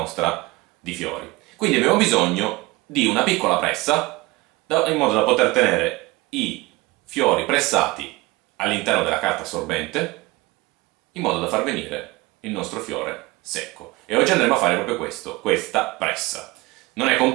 di fiori. Quindi abbiamo bisogno di una piccola pressa in modo da poter tenere i fiori pressati all'interno della carta assorbente in modo da far venire il nostro fiore secco. E oggi andremo a fare proprio questo, questa pressa. Non è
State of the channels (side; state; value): left; quieter; 21.9 dB